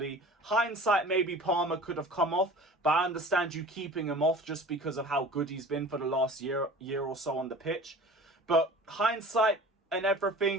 Hindsight, maybe Palmer could have come off, but I understand you keeping him off just because of how good he's been for the last year or so on the pitch. But hindsight and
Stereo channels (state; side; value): normal; both; correlation 0.42